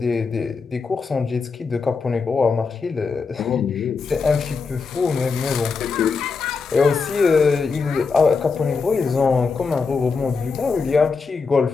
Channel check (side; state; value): right; quieter; 4.9 dB